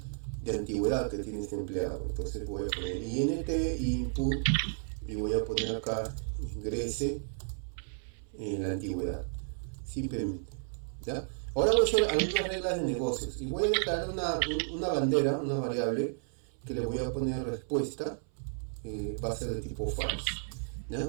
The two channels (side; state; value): left; silent; 56 dB below the other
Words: de antigüedad que tiene este empleado. Entonces voy a poner int input y voy a poner acá ingrese en la antigüedad, simplemente, ¿ya? Ahora voy a hacer algunas reglas de negocios y voy a declarar una bandera, una variable que le voy a poner respuesta, va a ser de tipo false,